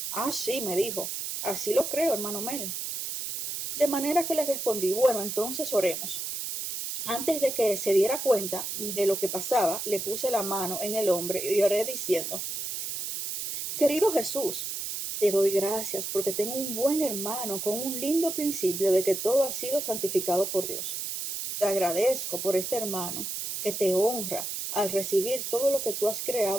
Ah, sí, me dijo. Así lo creo, hermano Mel. De manera que le respondí, bueno, entonces oremos. Antes de que se diera cuenta de lo que pasaba, le puse la mano en el hombro y oré diciendo, querido Jesús, te doy gracias porque tengo un buen hermano con un lindo principio de que todo ha sido santificado por Dios. Te agradezco por este hermano que te honra al recibir todo lo que tú has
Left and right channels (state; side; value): noise; right; hiss, 4 dB below the sound